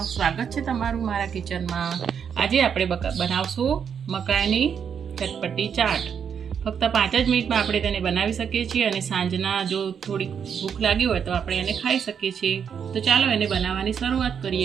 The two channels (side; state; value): left; quieter; 7.4 dB